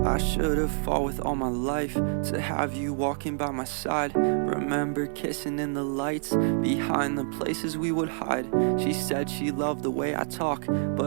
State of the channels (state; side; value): silent; left; 60 dB below the other